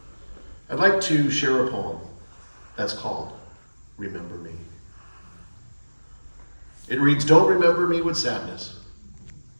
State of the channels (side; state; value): both; inverted; correlation -1.00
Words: I'd like to share a poem that's called Remember Me. It reads, don't remember me with sadness,